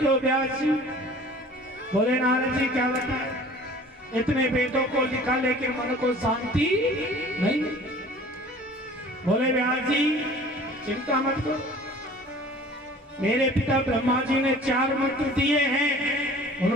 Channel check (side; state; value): both; normal; correlation 0.47